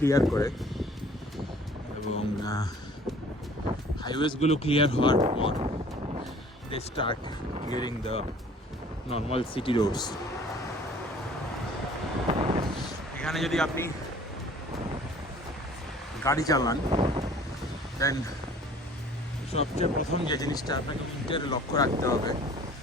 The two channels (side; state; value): both; normal; correlation 0.51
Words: করে এবং হাইওয়েজগুলো ক্লিয়ার হওয়ার পর they start getting the normal city roads. এখানে যদি আপনি গাড়ি চালান দেন সবচেয়ে প্রথম যে জিনিসটা আপনাকে উইন্টারে লক্ষ্য রাখতে হবে